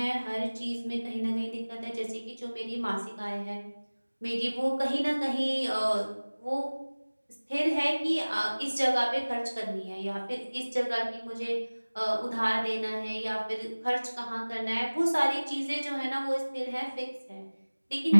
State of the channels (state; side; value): inverted; both; correlation -1.00